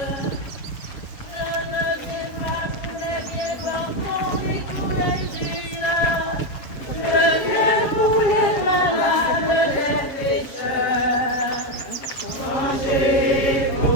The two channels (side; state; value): right; late; 7.4 ms